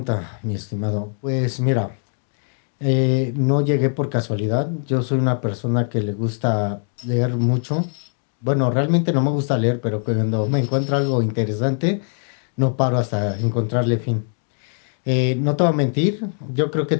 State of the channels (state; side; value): silent; right; 65 dB below the other